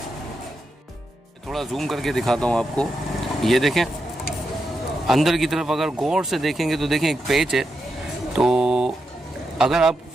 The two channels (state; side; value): normal; both; correlation 0.85